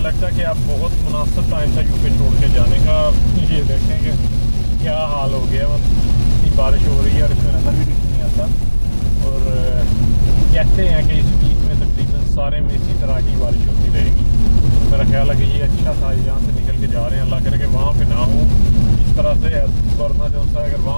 लगता है कि अब बहुत मुनासिब टाइम था यूके छोड़ के जाने का। ये देखें कि क्या हाल हो गया, इतनी बारिश हो रही है और इसमें नज़र भी कुछ नहीं आता। और कहते हैं कि इस वीक में तकरीबन सारे में इसी तरह की बारिश होती रहेगी। मेरा ख्याल है कि ये अच्छा था, यहाँ से निकल के जा रहे हैं, अल्लाह करे कि वहाँ पे ना हो इस तरह से। वरना जो सा अगर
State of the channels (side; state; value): both; inverted; correlation -1.00